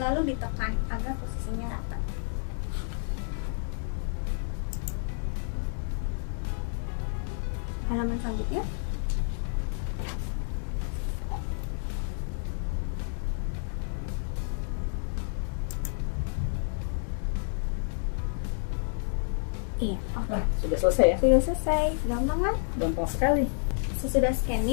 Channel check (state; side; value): silent; right; 58 dB below the other